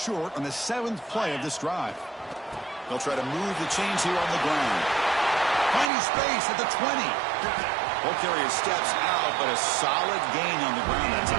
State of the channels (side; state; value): left; drops out; at 5.9 s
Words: on the 7th play of this drive. They'll try to move the chains here on the ground. Finding space at the 20. Ball carrier steps out, but a solid gain on the ground that